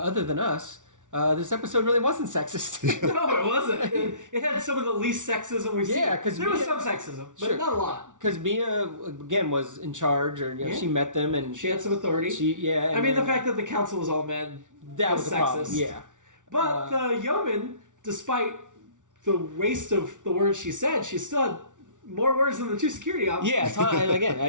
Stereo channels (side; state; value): left; late; 0.87 ms